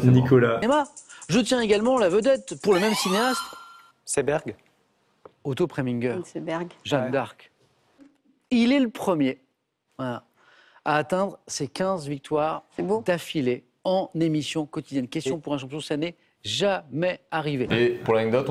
c'est Nicolas. Je tiens également la vedette pour le même cinéaste. Seberg. Otto Preminger, Vinceberg. Jeanne Ouais. d'Arc. Il est le premier voilà, à atteindre ses 15 victoires C'est beau. d'affilée en émission quotidienne. Question pour un champion, ça n'est jamais arrivé. Et pour l'anecdote,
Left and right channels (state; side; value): identical; both; correlation 1.00